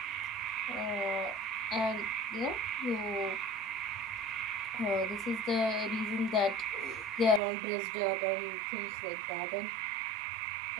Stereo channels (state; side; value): drops out; left; at 7.4 s